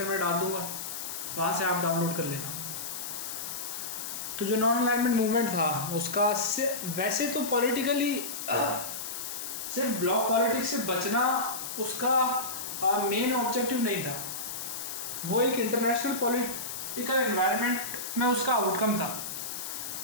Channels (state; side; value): noise; left; hiss, 6 dB below the sound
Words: में डाल दूँगा, वहाँ से आप डाउनलोड कर लेना। तो जो नॉन अलाइनमेंट मूवमेंट था उसका वैसे तो पॉलिटिकली सिर्फ ब्लॉक पॉलिटिक्स से बचना उसका मेन ऑब्जेक्टिव नहीं था, वो एक इंटरनेशनल पॉलिटिकल एनवायरनमेंट में उसका आउटकम था।